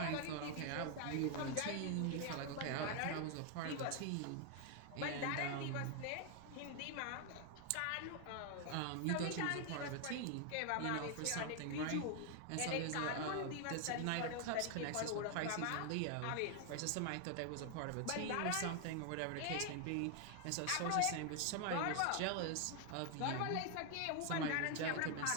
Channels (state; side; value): different; both; correlation 0.00